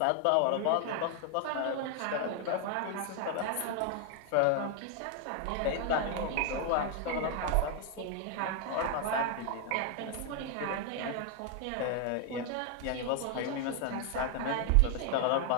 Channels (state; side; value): different; both; correlation 0.00